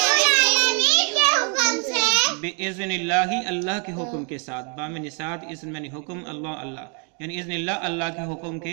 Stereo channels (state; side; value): quieter; left; 38.3 dB